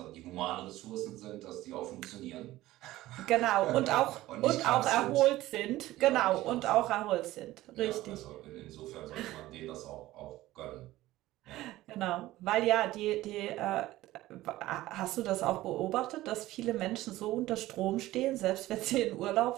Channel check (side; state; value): left; quieter; 16.5 dB